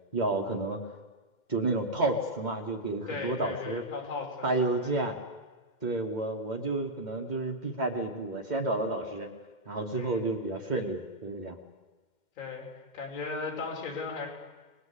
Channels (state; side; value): late; right; 2.1 ms